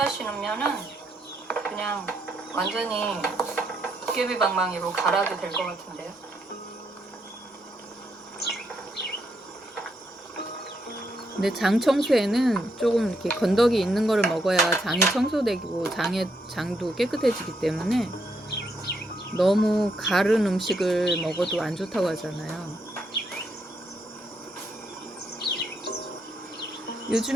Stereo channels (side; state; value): both; normal; correlation 0.77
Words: 그냥 완전히 도깨비방망이로 갈아도 될 것 같은데요. 근데 장 청소에는 조금 이렇게 건더기 있는 거를 먹어야 장이 청소되고 장도 깨끗해지기 때문에 너무 가른 음식을 먹어도 안 좋다고 하잖아요.